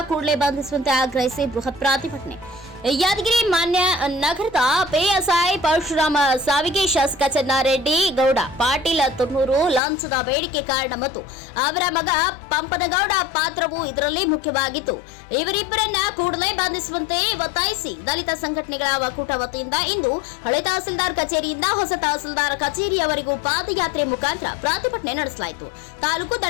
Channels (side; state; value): right; drops out; at 9.8 s